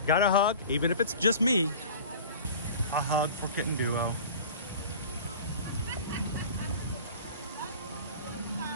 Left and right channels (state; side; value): inverted; both; correlation -0.41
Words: Got a hug, even if it's just me. A hug for Kitten Duo.